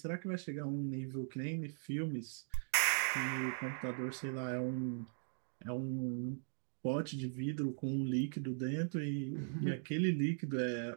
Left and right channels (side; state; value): left; silent; digital silence